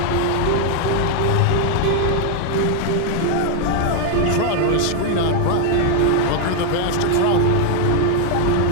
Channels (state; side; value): different; both; correlation 0.00